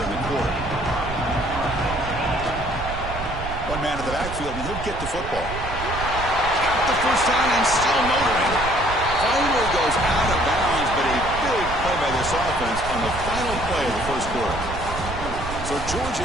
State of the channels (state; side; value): noise; right; rumble, 8 dB below the sound